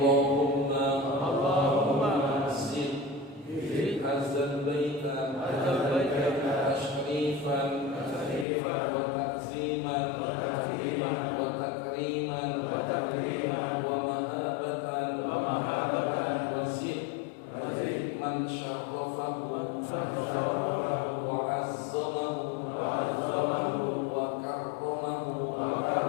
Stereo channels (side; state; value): right; drops out; at 8.5 s